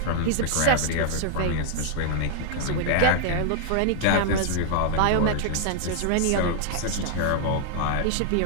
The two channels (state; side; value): different; both; correlation -0.01